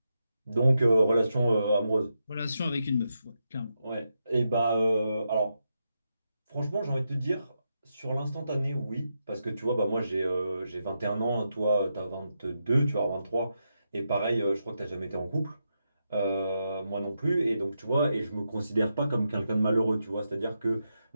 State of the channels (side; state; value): both; inverted; correlation -0.85